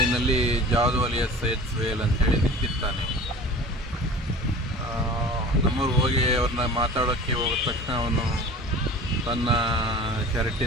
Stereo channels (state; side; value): normal; both; correlation 0.40